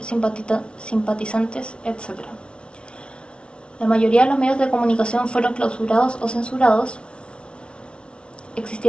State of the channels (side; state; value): right; late; 0.058 ms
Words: etc. La mayoría de los medios de comunicación fueron clausurados o censurados.